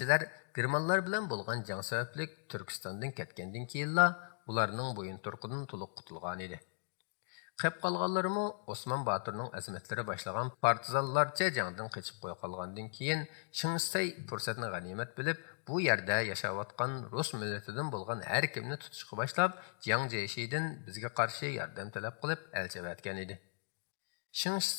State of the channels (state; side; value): silent; right; digital silence